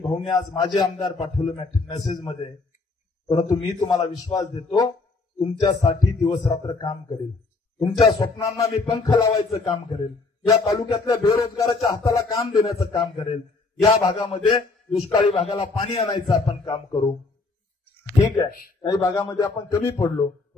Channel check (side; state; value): right; quieter; 3.8 dB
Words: आज माझे आमदार पाठवलं मेसेज मध्ये. परंतु मी तुम्हाला विश्वास देतो, तुमच्यासाठी दिवस रात्र काम करेल, तुमच्या स्वप्नांना मी पंख लावायचं काम करेल, या तालुक्यातल्या बेरोजगाराच्या हाताला काम देण्याचं काम करेल, या भागामध्ये दुष्काळी भागाला पाणी आणायचं आपण काम करू. ठीक आहे, काही भागामध्ये आपण कमी पडलो,